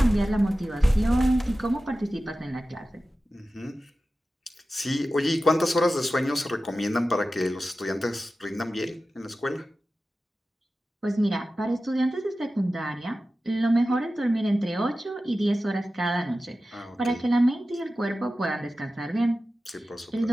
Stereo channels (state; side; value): normal; both; correlation 0.94